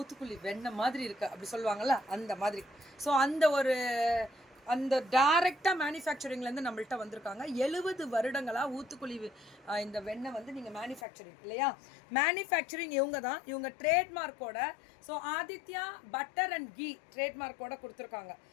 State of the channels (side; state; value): right; drops out; at 11.1 s